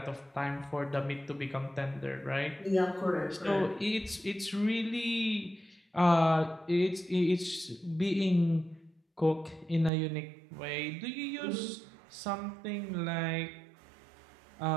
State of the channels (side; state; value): left; drops out; at 9.9 s